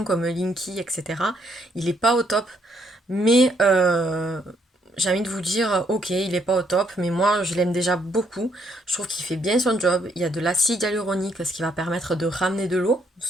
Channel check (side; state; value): both; normal; correlation 0.72